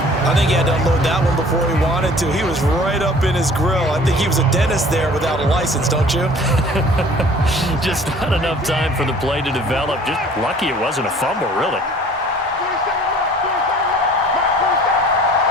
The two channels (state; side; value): normal; both; correlation 0.50